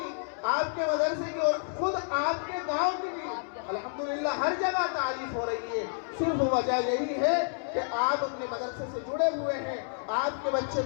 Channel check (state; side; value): silent; right; 58 dB below the other